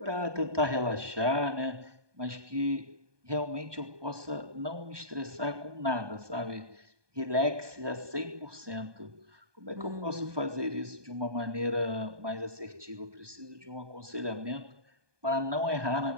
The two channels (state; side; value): late; left; 1.2 ms